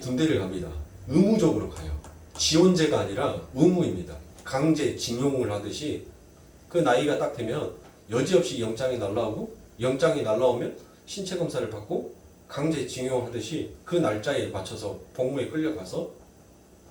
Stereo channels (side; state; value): both; identical; correlation 1.00